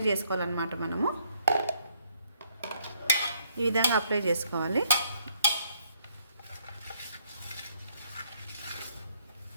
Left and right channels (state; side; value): inverted; both; correlation -0.69